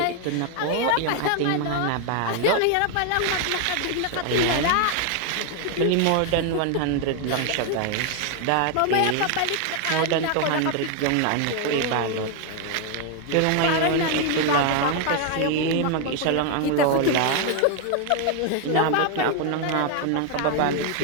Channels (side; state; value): both; different; correlation 0.01